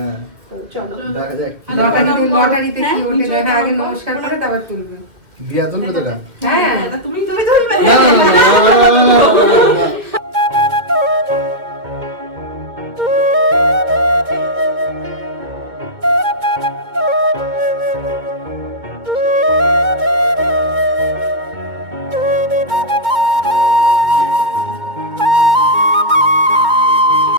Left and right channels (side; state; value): left; late; 2.2 ms